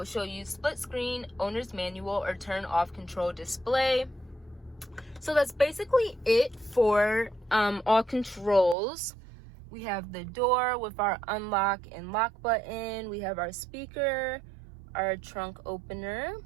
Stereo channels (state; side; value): drops out; left; at 8.8 s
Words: show you split screen, owner's manual, or turn off control display. So that's basically it for all controls. We have the door with our unlock and lock button. We have our speaker, our trunk opener,